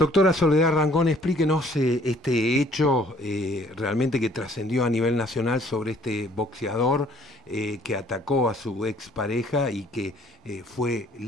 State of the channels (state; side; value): normal; both; correlation 0.59